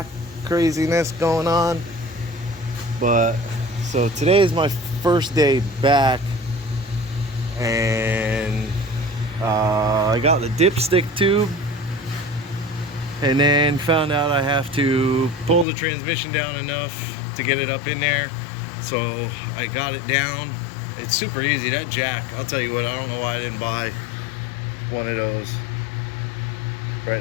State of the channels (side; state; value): right; drops out; at 15.7 s